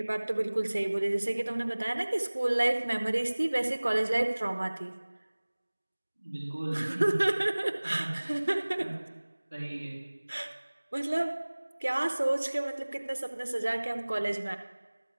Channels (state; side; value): inverted; both; correlation -1.00